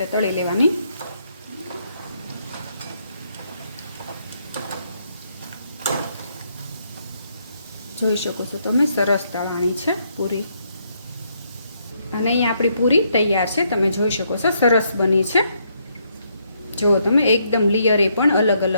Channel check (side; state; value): both; inverted; correlation -0.74